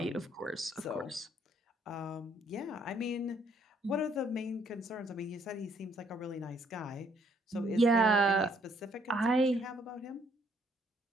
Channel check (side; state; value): both; normal; correlation 0.67